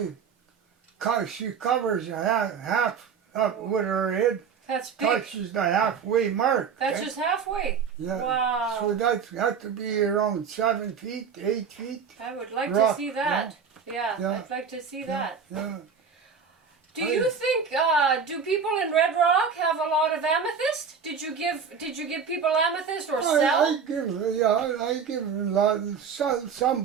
she covers half up with her head. That's big. Touches the halfway mark. That's eh? just halfway. Yeah. Wow. So that had to be around 7 feet, 8 feet. I would like rock, to see that. Yeah, Yeah. I'd like to see that. Yeah. Do you think do people in Red Rock have a lot of amethyst? Did you give people amethyst or sell? I give a lot. Some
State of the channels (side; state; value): left; quieter; 6.3 dB